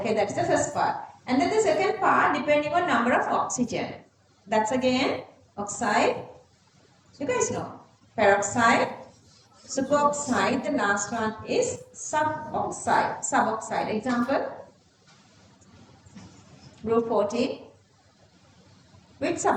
that's the first part. And then the second part, depending on number of oxygen. That's again oxide. You guys know. Peroxide, superoxide, the last one is suboxide. Suboxide. Example, group 14. Which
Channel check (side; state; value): both; identical; correlation 1.00